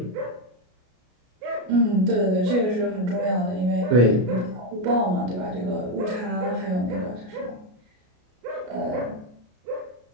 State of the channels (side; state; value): left; late; 33 ms